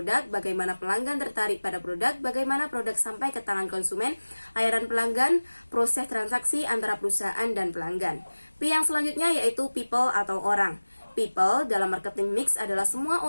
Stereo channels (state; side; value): inverted; both; correlation -1.00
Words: bagaimana pelanggan tertarik pada produk, bagaimana produk sampai ke tangan konsumen, layanan pelanggan, proses transaksi antara perusahaan dan pelanggan. P yang selanjutnya yaitu people atau orang. People dalam marketing mix adalah semua